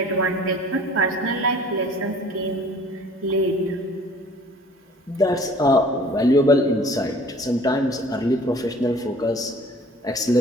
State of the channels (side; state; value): both; normal; correlation 0.50